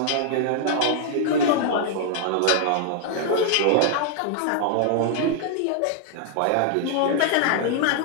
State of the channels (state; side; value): different; both; correlation -0.01